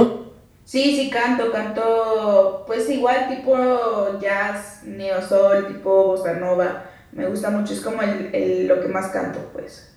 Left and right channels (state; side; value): identical; both; correlation 1.00